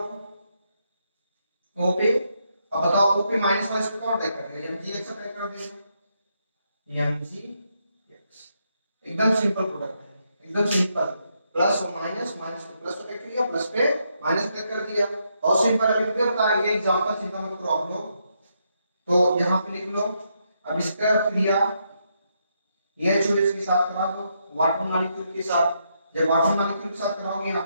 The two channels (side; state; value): both; inverted; correlation -0.79